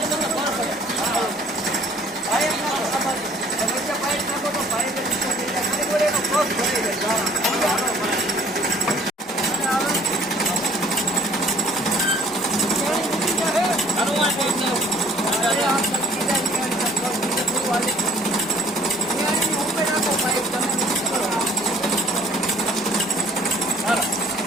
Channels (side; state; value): both; normal; correlation 0.56